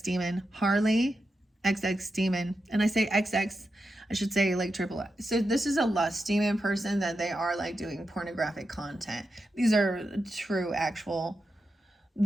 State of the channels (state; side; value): normal; both; correlation 0.88